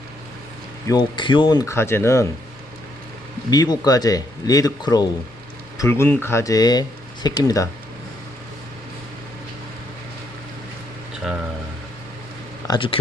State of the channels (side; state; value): both; normal; correlation 0.74